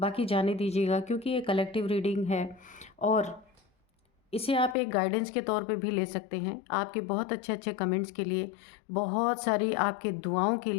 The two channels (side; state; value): right; drops out; at 4.8 s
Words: जाने दीजिएगा, क्योंकि ये कलेक्टिव रीडिंग है और इसे आप एक गाइडेंस के तौर पे भी ले सकते हैं। आपके बहुत अच्छे अच्छे कमेंट्स के लिए, बहुत सारी आपके दुआओं के